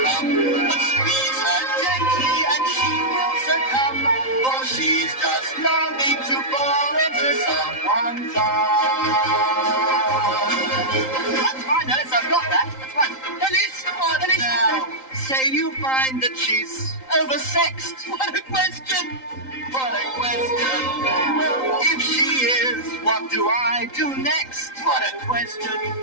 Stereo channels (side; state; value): right; late; 3.8 ms